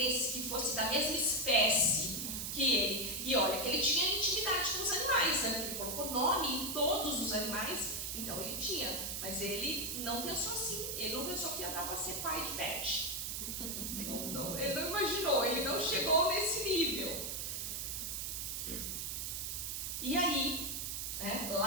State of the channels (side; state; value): right; noise; hiss, 3 dB below the sound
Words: que fosse da mesma espécie que ele. E olha, que ele tinha intimidade com os animais, né? Ele colocou nome em todos os animais, então ele tinha. Mas ele não pensou assim, ele não pensou que ia dar para ser pai de pet. Não, ele não imaginou, ele não chegou nesse nível. E aí, né,